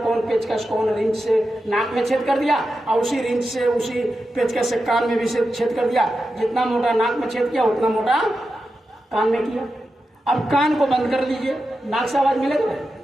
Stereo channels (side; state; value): both; normal; correlation 0.90